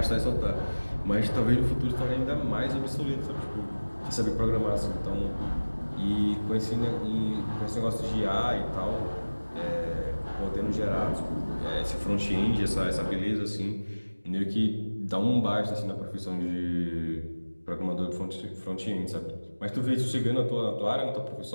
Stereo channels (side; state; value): both; inverted; correlation -1.00